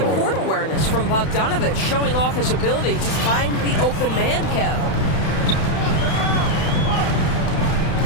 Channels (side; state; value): right; late; 31 ms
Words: court awareness from Bogdanovic, showing off his ability to find the open man, Kev?